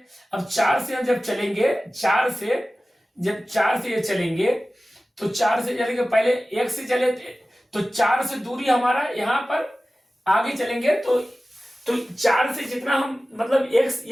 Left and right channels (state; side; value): normal; both; correlation 0.96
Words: अब 4 से हम जब चलेंगे, 4 से ये चलेंगे, तो 4 से चलेंगे, पहले x से चले तो 4 से दूरी हमारा यहाँ पर आगे चलेंगे। तो 4 से जितना हम, मतलब